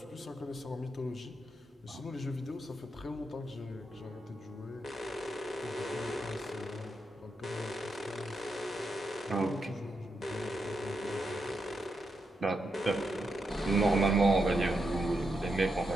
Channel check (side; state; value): both; normal; correlation 0.84